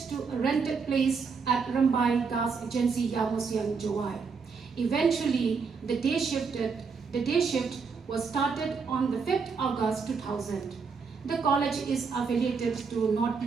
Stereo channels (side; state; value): left; quieter; 5.3 dB